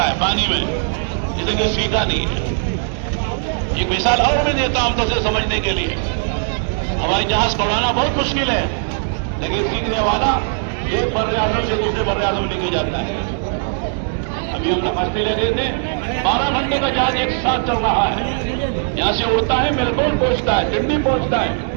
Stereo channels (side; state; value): left; silent; digital silence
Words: है पानी में, जिसे कि सीखा नहीं है। एक मिसाल और मैं देता हूं तो समझने के लिए, हवाई जहाज उड़ाना बहुत मुश्किल है, लेकिन सीखने वाला एक बर्रे आजम से दूसरे बर्रे आजम लेके जाता है। अभी हम नमस्ते ले रहे थे, 12 घंटे का जहाज एक साथ चल रहा है, यहां से उड़ता है मेलबोर्न पहुंचता है, सिडनी पहुंचता है,